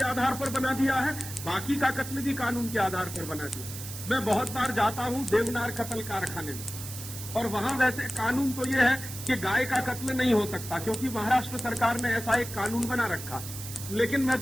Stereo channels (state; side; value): noise; right; hiss, 10 dB below the sound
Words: आधार पर बना दिया है, बाकी का कत्ल भी कानून के आधार पर बना दिया। मैं बहुत बार जाता हूं देवनार कत्ल कारखाने में और वहां वैसे कानून तो यह है कि गाय का कत्ल नहीं हो सकता क्योंकि महाराष्ट्र सरकार ने ऐसा एक कानून बना रखा। लेकिन मैं